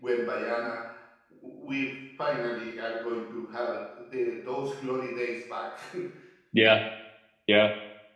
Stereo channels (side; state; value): both; identical; correlation 1.00